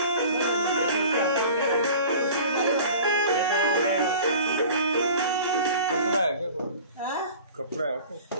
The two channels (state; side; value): inverted; both; correlation -0.42